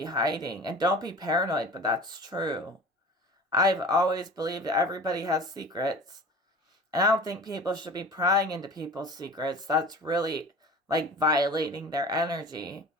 hiding. And don't be paranoid, but that's true. I've always believed that everybody has secrets. And I don't think people should be prying into people's secrets. That's really like violating their energy.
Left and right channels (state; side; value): normal; both; correlation 0.39